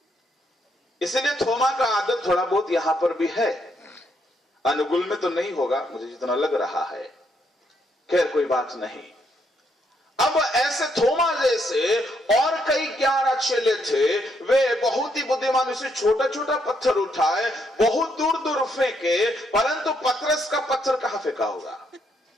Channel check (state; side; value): normal; both; correlation 0.75